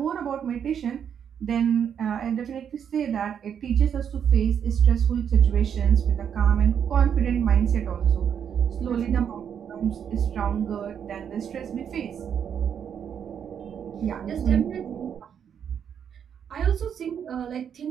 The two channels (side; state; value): left; quieter; 8.2 dB